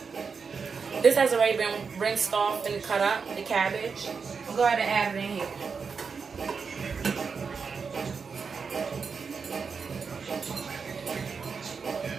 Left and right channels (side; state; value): left; quieter; 5.5 dB